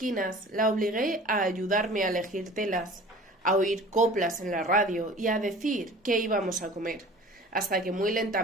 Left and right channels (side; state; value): both; normal; correlation 0.44